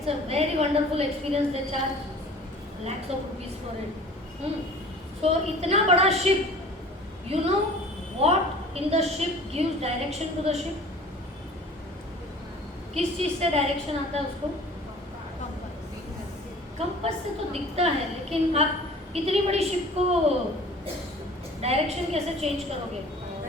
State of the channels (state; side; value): normal; both; correlation 0.45